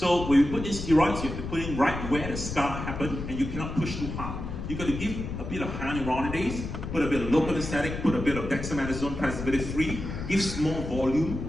when you put in steroids, you have to put in right where the scar happened, and you cannot push too hard. You've got to give a bit of hyaluronidase, put a bit of local anesthetic, put a bit of dexamethasone preservative-free, give small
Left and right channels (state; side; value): noise; left; rumble, 6 dB below the sound